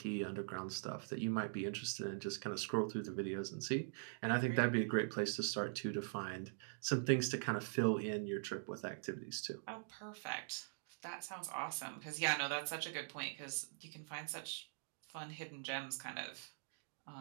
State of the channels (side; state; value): left; silent; digital silence